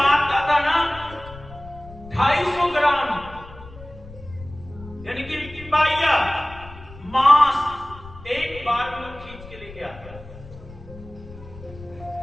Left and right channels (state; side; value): noise; left; rumble, 17 dB below the sound